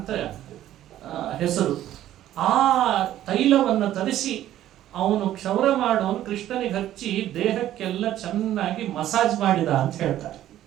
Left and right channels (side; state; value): left; quieter; 12.8 dB